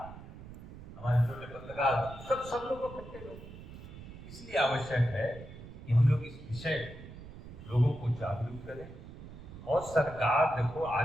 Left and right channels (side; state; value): right; noise; rumble, 14 dB below the sound